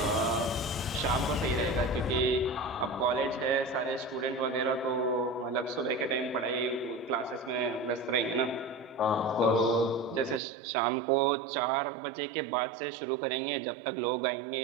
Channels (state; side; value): drops out; left; at 10.4 s